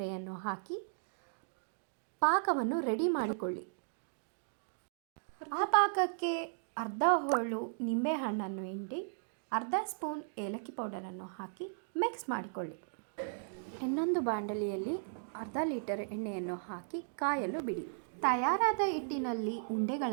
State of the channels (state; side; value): silent; left; digital silence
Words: ಹಾಕಿ ಪಾಕವನ್ನು ರೆಡಿ ಮಾಡಿಕೊಳ್ಳಿ. ಆ ಪಾಕಕ್ಕೆ ಅರ್ಧ ಹೋಳು ನಿಂಬೆಹಣ್ಣನ್ನು ಹಿಂಡಿ ಅರ್ಧ ಸ್ಪೂನ್ ಏಲಕ್ಕಿ ಪೌಡರನ್ನು ಹಾಕಿ ಮಿಕ್ಸ್ ಮಾಡಿಕೊಳ್ಳಿ. ಇನ್ನೊಂದು ಬಾಂಡಲಿಯಲ್ಲಿ ಅರ್ಧ ಲೀಟರ್ ಎಣ್ಣೆಯನ್ನು ಹಾಕಿ ಕಾಯಲು ಬಿಡಿ. ತಯಾರಾದ ಹಿಟ್ಟಿನಲ್ಲಿ